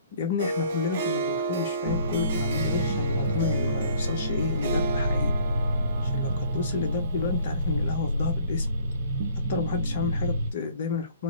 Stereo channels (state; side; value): inverted; both; correlation -0.57